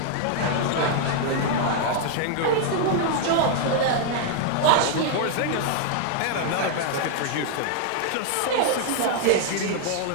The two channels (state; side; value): different; both; correlation 0.00